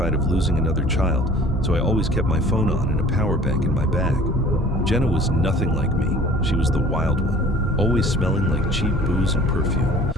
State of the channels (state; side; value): normal; both; correlation 0.48